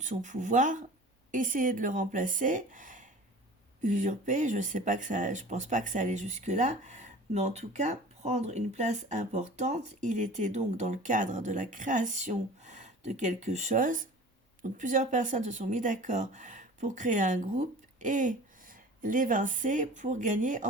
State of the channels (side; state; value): both; normal; correlation 0.41